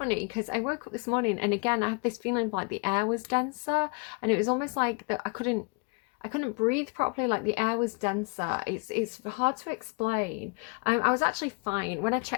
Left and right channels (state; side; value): quieter; right; 32.4 dB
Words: because I woke up this morning and again I have this feeling of like the air was denser and it was almost like that I couldn't breathe properly, like the air was denser. It's hard to explain. I was actually fine when I